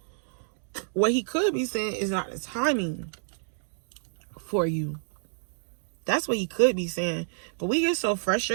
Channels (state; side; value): silent; left; digital silence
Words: What he could be saying is not the timing for you. That's what he could be saying. But we get so